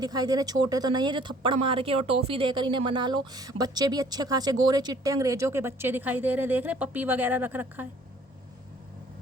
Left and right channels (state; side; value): normal; both; correlation 0.57